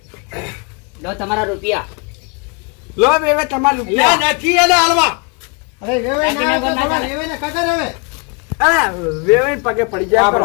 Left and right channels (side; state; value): right; quieter; 33.4 dB